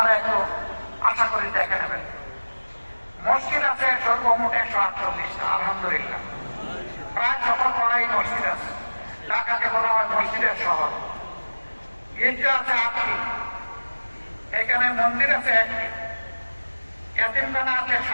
একটু আশা করি দেখে নেবেন। মসজিদ আছে সর্বমোট 148টা, আলহামদুলিল্লাহ। প্রায় সকল পাড়াই মসজিদ আছে। ঢাকাকে বলা হয় মসজিদের শহর। গির্জা আছে 8টি, এখানে মন্দির আছে 1টি, এতিমখানা আছে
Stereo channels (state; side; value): inverted; both; correlation -1.00